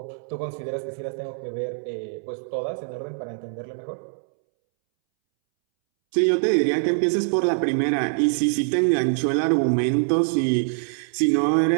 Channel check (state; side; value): silent; left; 63 dB below the other